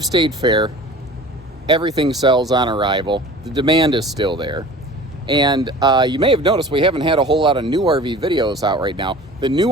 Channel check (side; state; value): both; normal; correlation 0.42